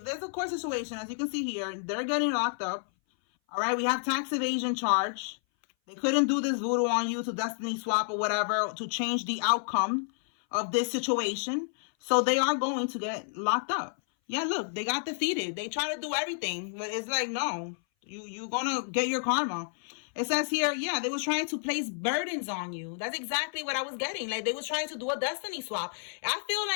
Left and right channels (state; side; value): silent; right; 58 dB below the other